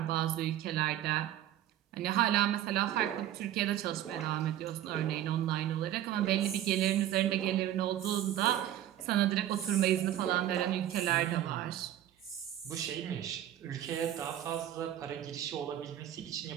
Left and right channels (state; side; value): quieter; left; 12.2 dB